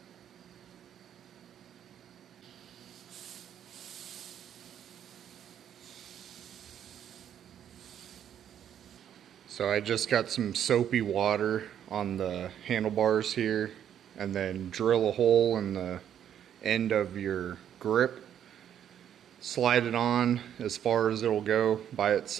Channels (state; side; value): quieter; left; 9.8 dB